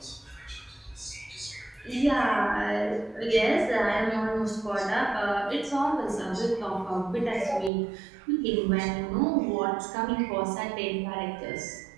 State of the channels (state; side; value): drops out; left; at 7.7 s